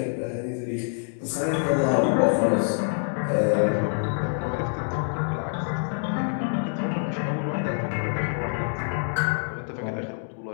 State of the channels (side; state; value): right; silent; digital silence